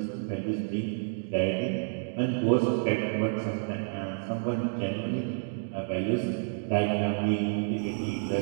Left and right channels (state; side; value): silent; left; digital silence